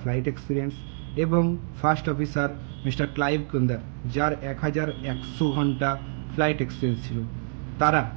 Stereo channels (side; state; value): left; silent; 61 dB below the other